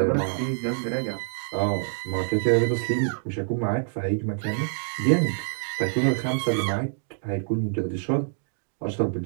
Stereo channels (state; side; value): silent; left; digital silence